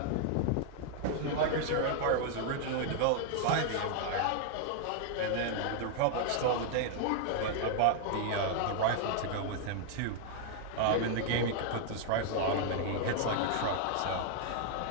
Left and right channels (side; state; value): both; different; correlation 0.00